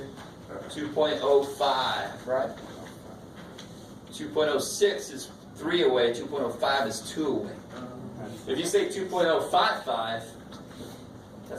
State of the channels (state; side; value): identical; both; correlation 1.00